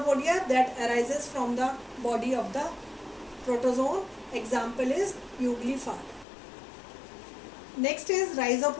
that arises from the body of the protozoan. Example is Euglifar. Next is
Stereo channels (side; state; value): right; drops out; at 6.2 s